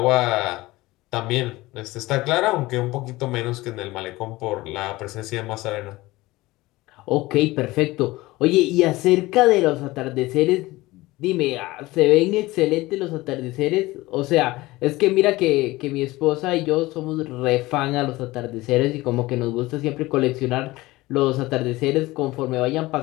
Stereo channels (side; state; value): right; quieter; 19.5 dB